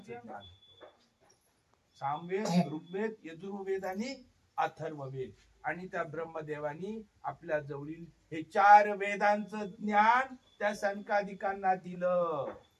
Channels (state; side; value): identical; both; correlation 1.00